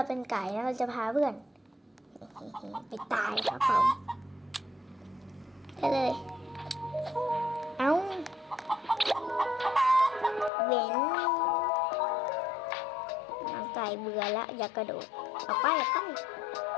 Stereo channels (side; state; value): right; drops out; at 10.5 s